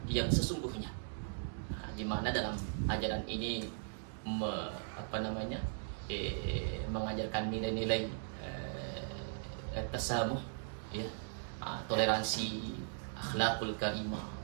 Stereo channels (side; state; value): left; silent; digital silence